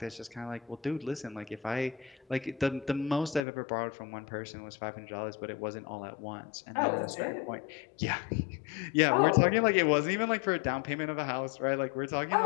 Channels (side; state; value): right; drops out; at 3.4 s